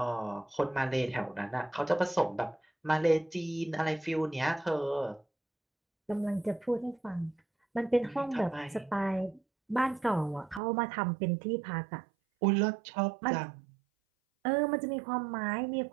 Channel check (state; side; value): drops out; left; at 10.6 s